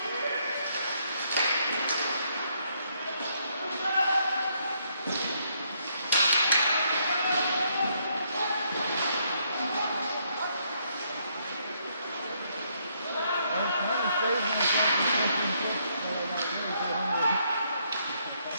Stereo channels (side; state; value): both; inverted; correlation -0.73